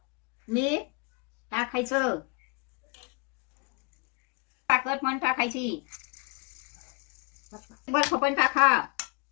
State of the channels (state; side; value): quieter; right; 29.9 dB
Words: मीठ टाकायचं. साखर पण टाकायची. बर्फ पण टाका.